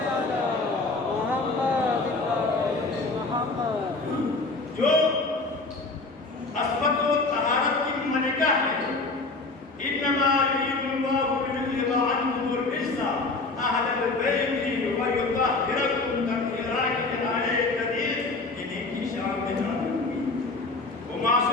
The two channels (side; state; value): right; quieter; 3.5 dB